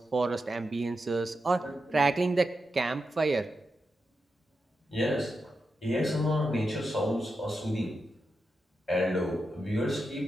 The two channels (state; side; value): normal; both; correlation 0.88